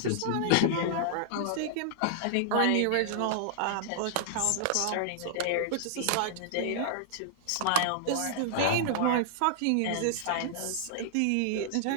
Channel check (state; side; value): different; both; correlation -0.01